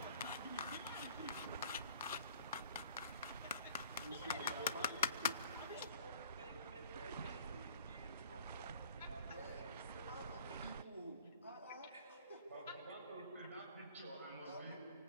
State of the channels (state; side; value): inverted; both; correlation -0.51